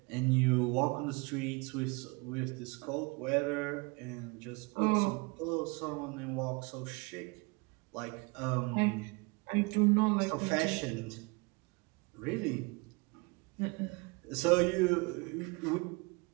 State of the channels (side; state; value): left; quieter; 28.2 dB